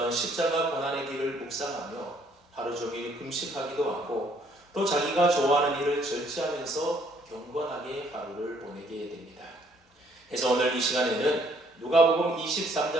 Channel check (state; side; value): normal; both; correlation 0.64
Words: 십자가 고난의 길을 묵상하며 하루 종일 금식하기도 하고 또 자기가 좋아하는 일을 절제하면서 경건하게 하루를 보내게 됩니다. 그래서 오늘 이 시간에는 누가복음